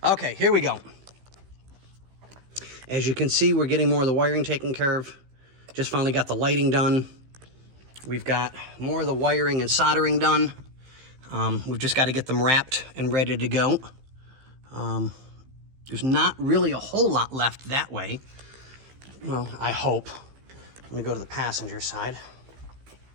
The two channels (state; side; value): late; left; 15 ms